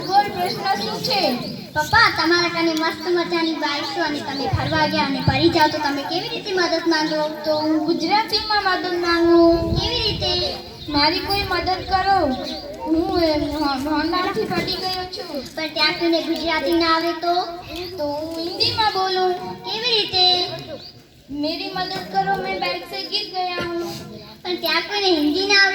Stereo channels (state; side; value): identical; both; correlation 1.00